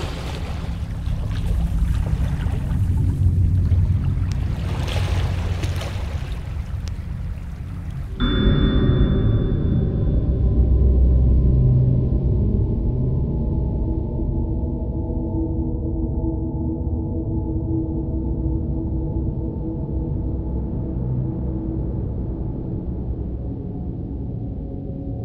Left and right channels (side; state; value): both; identical; correlation 1.00